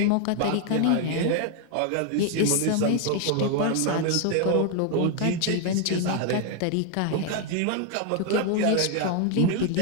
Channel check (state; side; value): different; both; correlation 0.00